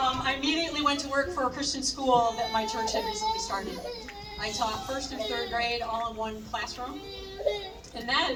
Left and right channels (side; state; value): both; identical; correlation 1.00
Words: immediately went to work for a Christian school that my church had recently started. I taught 1st through 3rd grade all in one classroom. And